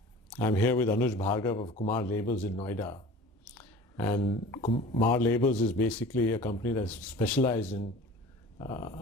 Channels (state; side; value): normal; both; correlation 0.41